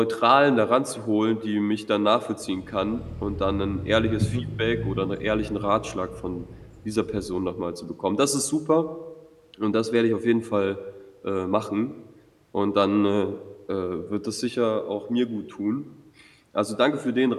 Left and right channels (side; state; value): both; identical; correlation 1.00